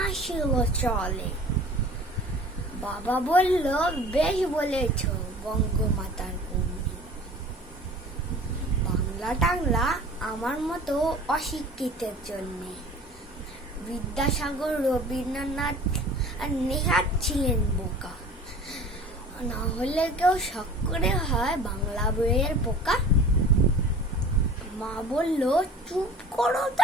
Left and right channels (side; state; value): both; normal; correlation 0.44